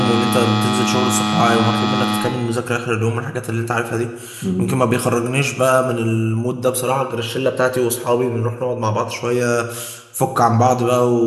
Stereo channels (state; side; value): identical; both; correlation 1.00